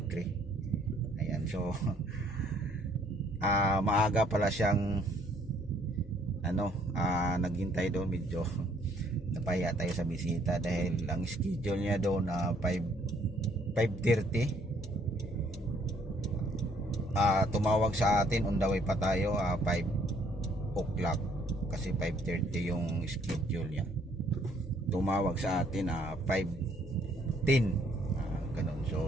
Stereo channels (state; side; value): normal; both; correlation 0.64